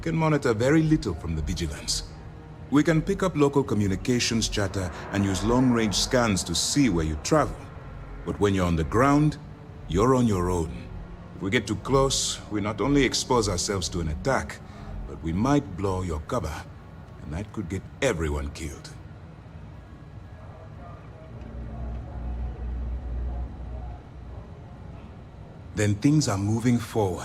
monitor very little from the vigilance. We can pick up local communications chatter and use long-range scans to see where you travel. But when you're on the ground, you're on your own. If we get too close, we not only expose ourselves to an attack, but we might blow your cover, and that could get everyone killed. Then things are moving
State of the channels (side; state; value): both; identical; correlation 1.00